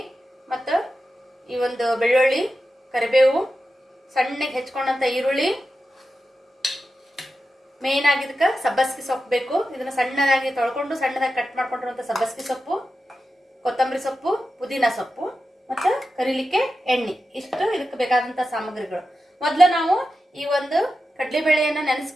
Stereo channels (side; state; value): both; normal; correlation 0.91